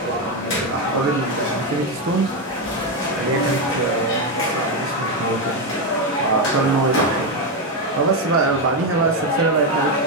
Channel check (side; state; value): both; normal; correlation 0.07